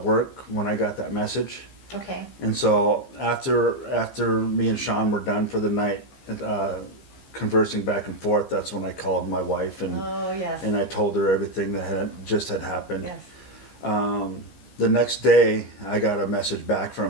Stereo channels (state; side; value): late; right; 15 ms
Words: work when I got that message. Okay. And so after me and Sean were done for the night, conversing back and forth, that's when I called my wife and Oh yes. I told her everything that had happened. Yes. The next day, I got a message back